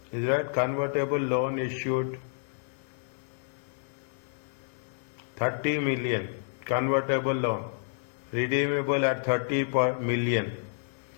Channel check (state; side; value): silent; right; 58 dB below the other